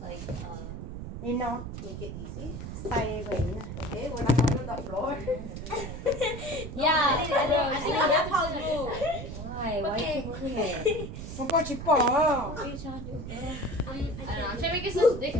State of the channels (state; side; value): noise; right; rumble, 8 dB below the sound